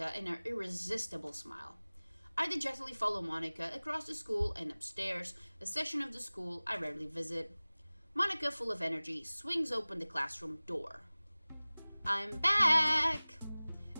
in her irresistible smile. I dejectedly follow Monica across the school and upstairs, a section of the school I rarely visit. Monica, full of energy, swings open the classroom door. I'm back!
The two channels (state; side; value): inverted; both; correlation -1.00